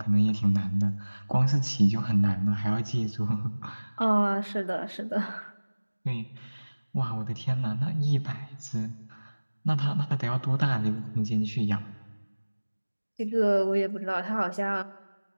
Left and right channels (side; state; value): both; inverted; correlation -1.00